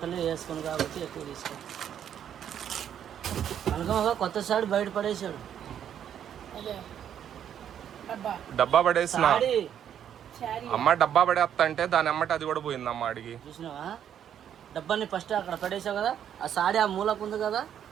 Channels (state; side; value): quieter; left; 9.4 dB